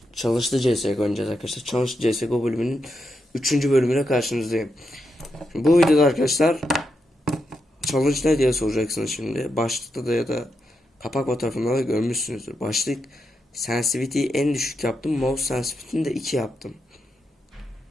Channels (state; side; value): normal; both; correlation 0.85